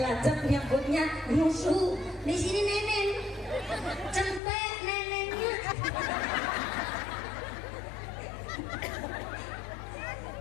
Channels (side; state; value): right; drops out; at 4.4 s